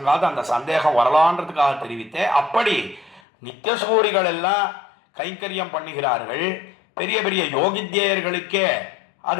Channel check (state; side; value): drops out; right; at 3.2 s